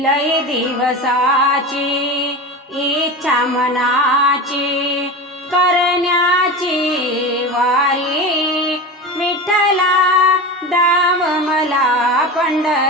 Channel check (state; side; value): normal; both; correlation 0.26